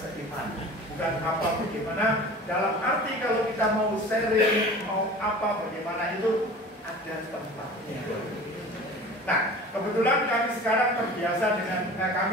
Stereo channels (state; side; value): normal; both; correlation 0.40